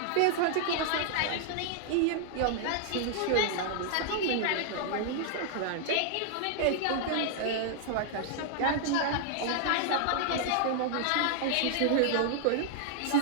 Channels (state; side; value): different; both; correlation 0.00